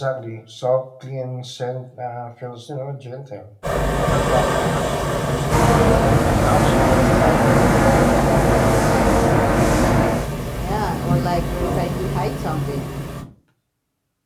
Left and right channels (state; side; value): identical; both; correlation 1.00